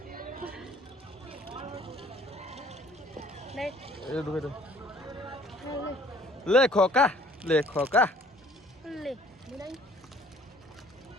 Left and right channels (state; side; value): normal; both; correlation 0.56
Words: লে এই ঢুকাই দে লে খোকা লে